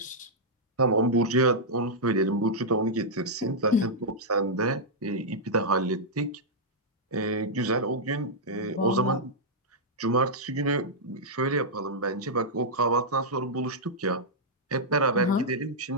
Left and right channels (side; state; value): both; normal; correlation -0.08